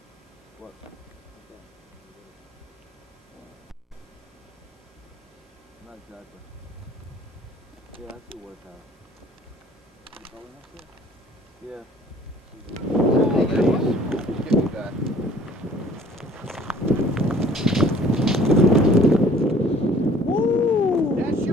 What? Not exactly. Yeah, that's the water tower. Yeah. Oh, there it is. Give me that. Woo! That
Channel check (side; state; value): both; normal; correlation 0.54